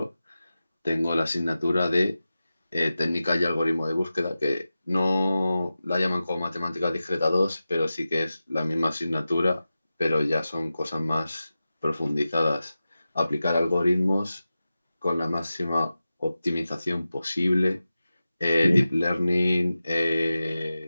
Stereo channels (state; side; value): inverted; both; correlation -0.94